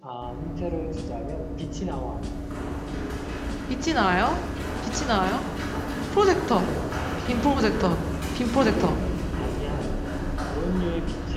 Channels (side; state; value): both; identical; correlation 1.00